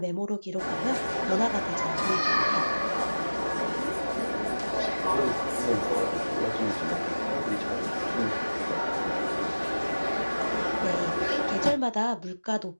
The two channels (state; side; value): inverted; both; correlation -1.00